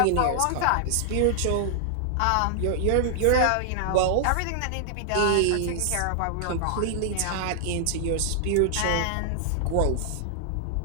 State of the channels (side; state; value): both; different; correlation -0.01